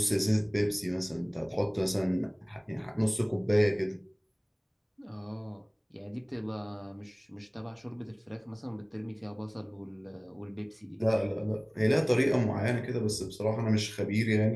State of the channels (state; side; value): identical; both; correlation 1.00